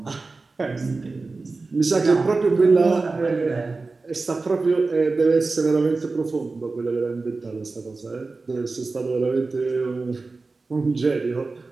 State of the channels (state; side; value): quieter; left; 3.8 dB